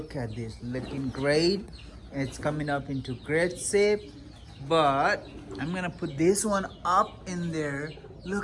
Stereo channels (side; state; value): both; identical; correlation 1.00